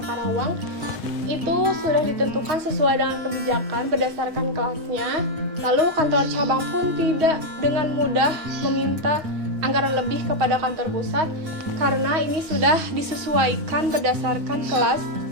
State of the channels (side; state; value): left; late; 6.3 ms